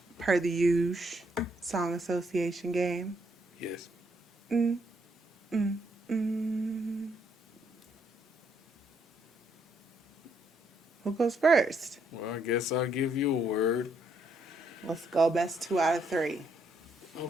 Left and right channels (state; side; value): normal; both; correlation 0.73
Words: per the usual song association game. Yes. Mm, mm, mm. Who goes first? Well, I guess I'll give you a word. Let's go. Best 2 out of 3.